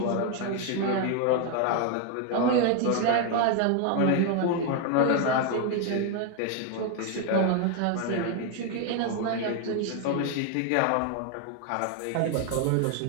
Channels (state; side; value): different; both; correlation 0.01